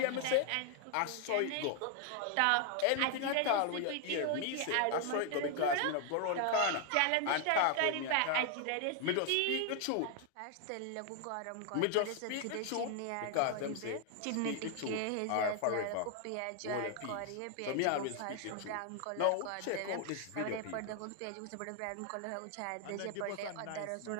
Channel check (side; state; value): both; different; correlation 0.00